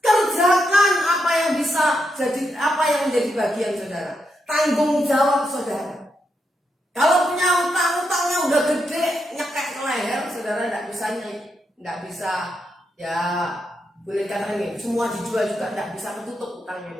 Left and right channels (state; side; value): normal; both; correlation 0.82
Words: Kerjakan apa yang bisa jadi, apa yang menjadi bagian saudara. Tanggung jawab saudara. Kalau punya utang-utangnya udah gede, nyekek ke leher, saudara tidak bisa ya boleh katakan ini, semua dijual juga tidak bisa ketutup utangnya